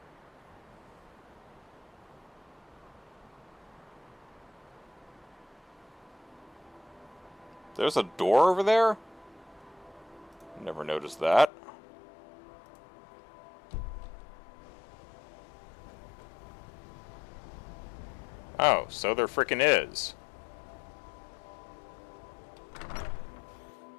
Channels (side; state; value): right; drops out; at 11.5 s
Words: There's a door over there? Never noticed that. Oh, so there frickin' is.